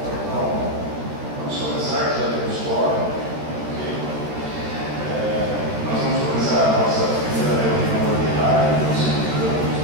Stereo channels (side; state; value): left; late; 14 ms